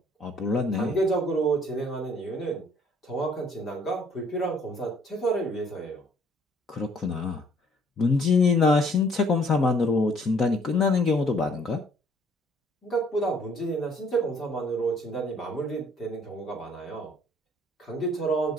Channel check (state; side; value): normal; both; correlation 0.61